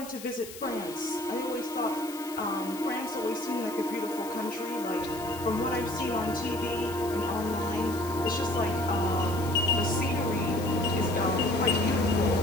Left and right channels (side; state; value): left; noise; hiss, 14 dB below the sound